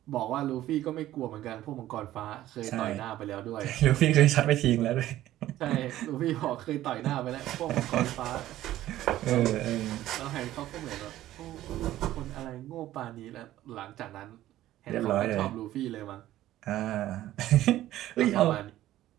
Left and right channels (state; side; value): quieter; left; 14.2 dB